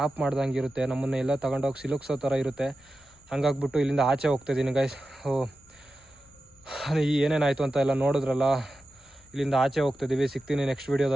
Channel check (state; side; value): noise; left; rumble, 30 dB below the sound